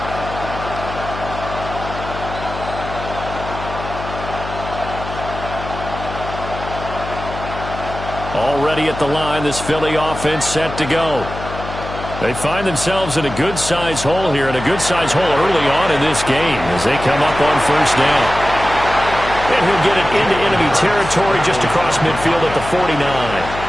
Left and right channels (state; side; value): noise; left; hum, 9 dB below the sound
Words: Already at the line, this Philly offense set to go. They find themselves in a good-sized hole here, and a good-sized hole early on in this game as they come up on first down. And he'll get it into enemy territory just across midfield at the 49.